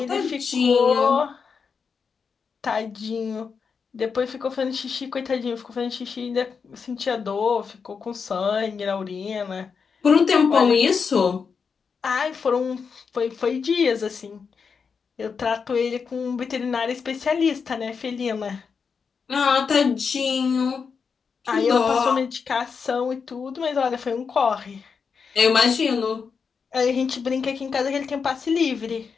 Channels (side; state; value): right; quieter; 5.8 dB